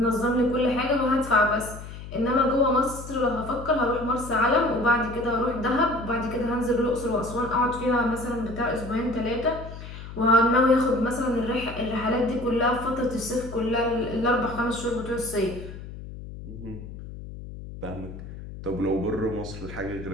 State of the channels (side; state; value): left; noise; hum, 12 dB below the sound